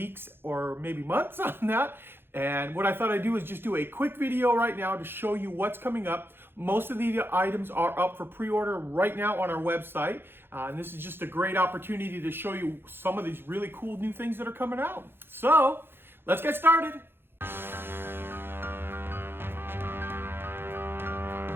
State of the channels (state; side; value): late; left; 0.10 ms